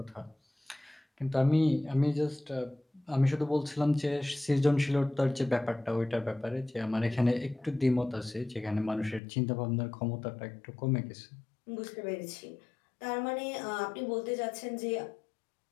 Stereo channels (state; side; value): drops out; right; at 9.2 s